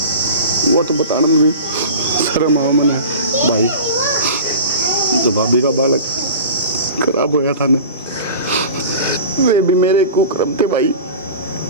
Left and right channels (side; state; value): both; inverted; correlation -0.36